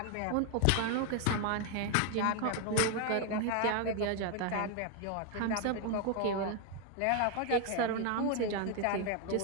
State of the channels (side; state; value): both; different; correlation 0.01